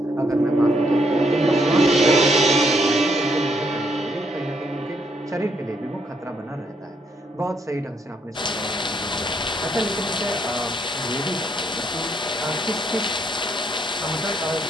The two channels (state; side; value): normal; both; correlation 0.73